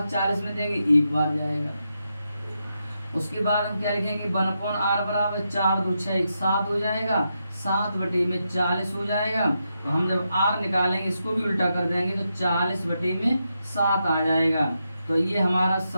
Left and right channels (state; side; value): inverted; both; correlation -0.84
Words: 40 में देंगे 1 बार जाएगा। उसके बाद हम क्या लिखेंगे, 1/r बराबर 4 2 6 1 7 हो जाएगा, 7/40 हो जाएगा। तो हम जब r निकालेंगे इसको भी उल्टा कर देंगे तो 40/7 आ जाएगा। तो ये हमारा